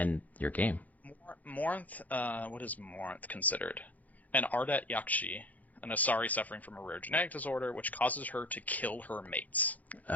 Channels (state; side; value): late; right; 0.079 ms